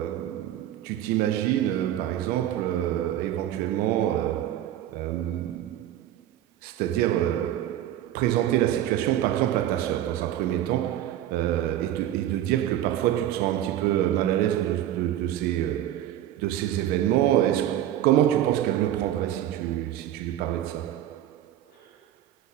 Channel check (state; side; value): quieter; left; 12.3 dB